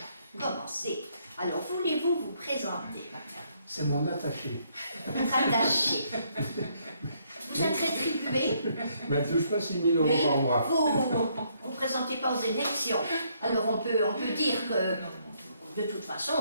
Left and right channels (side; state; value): both; inverted; correlation -0.71